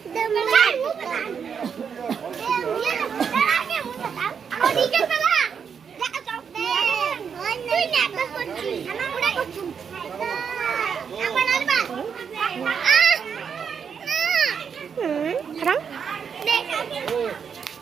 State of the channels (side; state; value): left; quieter; 6.9 dB